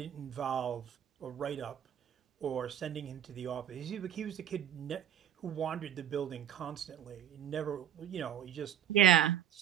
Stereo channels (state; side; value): quieter; left; 10.1 dB